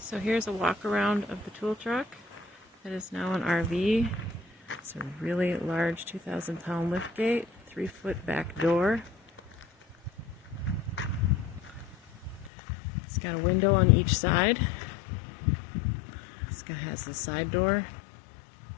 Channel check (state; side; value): drops out; right; at 12.5 s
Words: So here's a walk around of the tool truck that is now an RV. It's a really large 2,000-pound lift gate, 3-foot back door. It's got a window on each side. This guy has the side door.